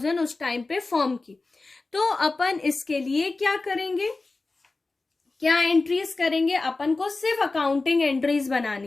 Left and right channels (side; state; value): right; quieter; 3.5 dB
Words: उस टाइम पे फर्म की। तो अपन इसके लिए क्या करेंगे, क्या एंट्रीज करेंगे, अपन को सिर्फ अकाउंटिंग एंट्रीज